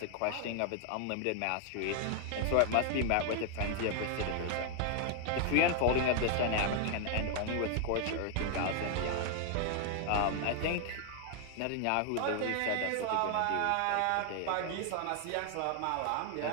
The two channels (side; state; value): both; different; correlation 0.00